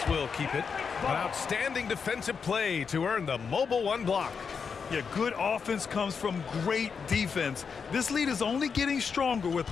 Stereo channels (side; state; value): right; quieter; 5.9 dB